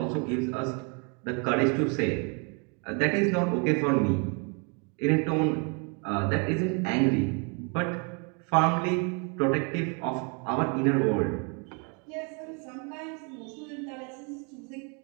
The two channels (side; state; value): left; quieter; 35.8 dB